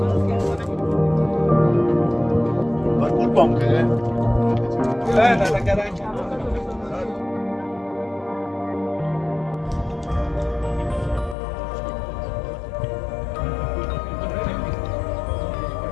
برکول بام کنه نه کرای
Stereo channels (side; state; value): right; drops out; at 11.4 s